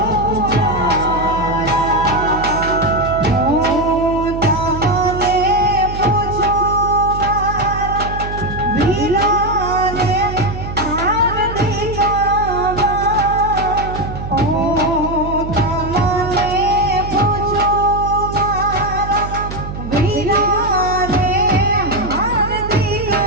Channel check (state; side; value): noise; right; hum, 8 dB below the sound